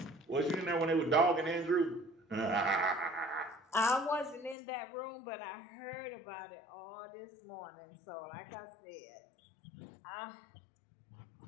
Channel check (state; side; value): drops out; right; at 4.5 s